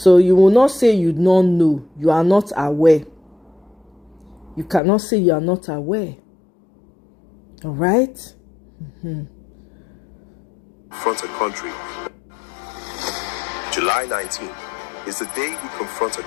you will not say you don't know, you are not aware. You cannot say you are not aware. All right? Confront a country. July 19th is the day we confront a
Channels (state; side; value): drops out; right; at 4.8 s